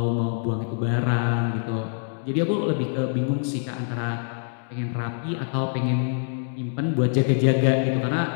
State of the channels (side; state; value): right; silent; digital silence